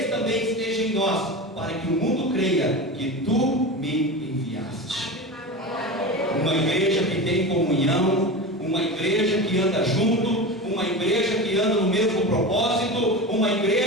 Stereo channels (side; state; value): both; normal; correlation 0.26